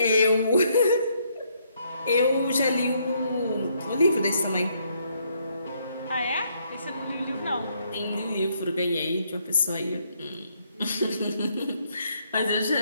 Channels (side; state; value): both; inverted; correlation -0.72